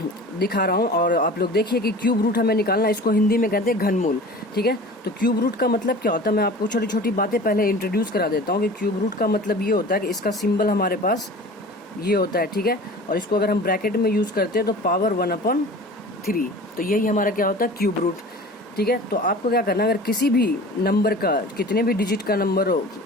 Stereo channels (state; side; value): normal; both; correlation 0.40